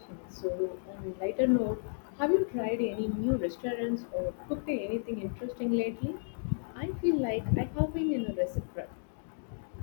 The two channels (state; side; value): silent; right; digital silence